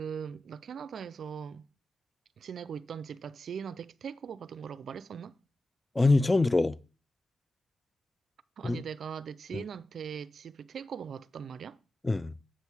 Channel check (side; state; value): both; normal; correlation 0.93